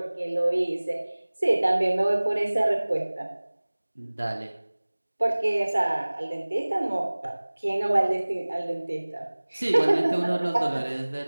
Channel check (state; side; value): inverted; both; correlation -1.00